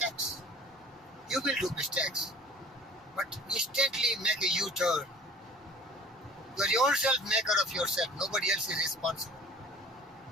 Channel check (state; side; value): normal; both; correlation 0.45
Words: You will do mistakes. But instantly make a U-turn. You are yourself maker of yourself. Nobody else is responsible.